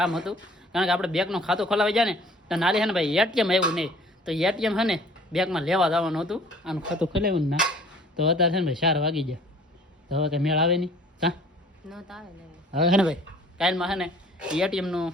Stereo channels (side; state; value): both; normal; correlation 0.52